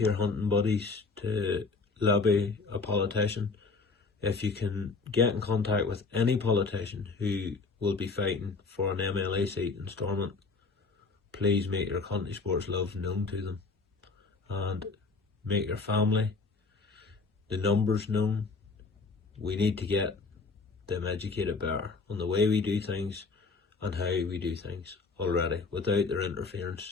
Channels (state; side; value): quieter; right; 4.2 dB